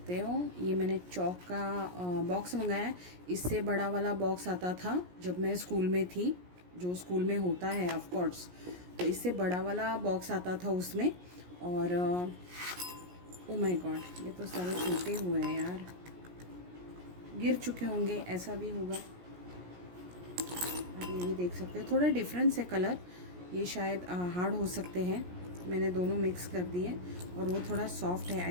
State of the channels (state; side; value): late; left; 17 ms